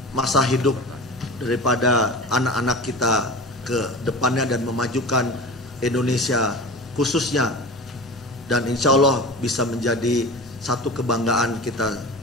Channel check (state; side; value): normal; both; correlation 0.33